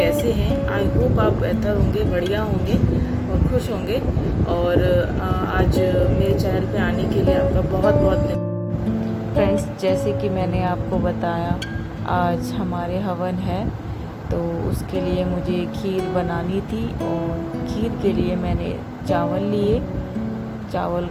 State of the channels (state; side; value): identical; both; correlation 1.00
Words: हैं? आई होप आप बेहतर होंगे, बढ़िया होंगे और खुश होंगे। और आज मेरे चैनल पे आने के लिए आपका बहुत बहुत धन्यवाद। फ्रेंड्स, जैसे कि मैंने आपको बताया, आज हमारे हवन है, तो उसके लिए मुझे खीर बनानी थी। और खीर के लिए मैंने चावल लिए। चावल